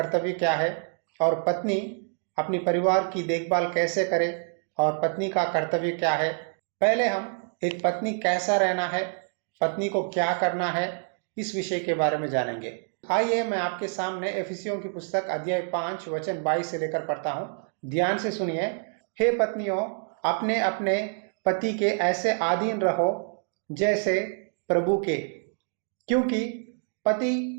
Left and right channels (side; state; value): left; silent; 60 dB below the other